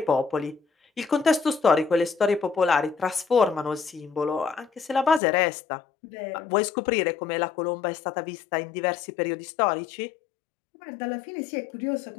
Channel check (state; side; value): drops out; right; at 5.2 s